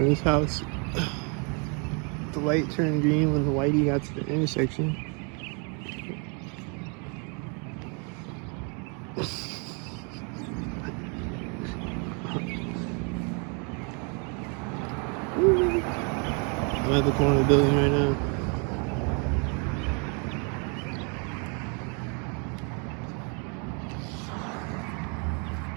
of this house. The light turned green when the whitey got to the intersection. I'm at the corner of the building right now.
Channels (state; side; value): quieter; left; 35.7 dB